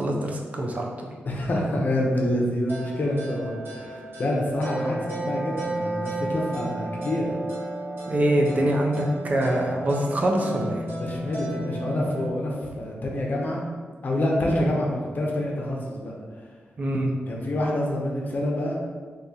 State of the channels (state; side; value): normal; both; correlation 0.86